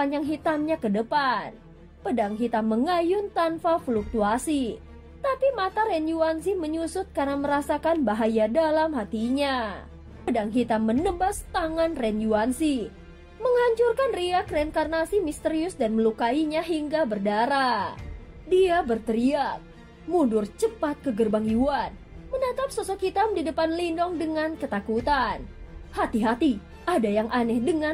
hitamnya ke depan. Pedang hitam mengayun tanpa fluktuasi, tapi mata Ren Yuanzi menyusut karena merasakan bahaya dalam hatinya. Pedang hitam menebas tangan Ren Yuanzi, menghancurkan riak reinkarnasi misterius dan melukainya hingga berdarah. Dia berteriak, mundur cepat ke gerbang Yuan, menatap sosok hitam di depan Lindong dengan ketakutan. Hati-hati, ada yang aneh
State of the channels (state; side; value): identical; both; correlation 1.00